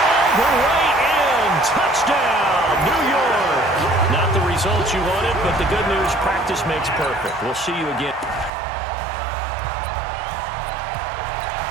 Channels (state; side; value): drops out; left; at 8.5 s